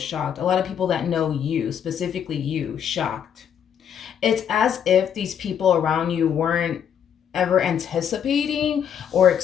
A lot of people that know you, specifically you, shocked. It's as if these people around you weren't ever anticipating or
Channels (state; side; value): quieter; right; 8.6 dB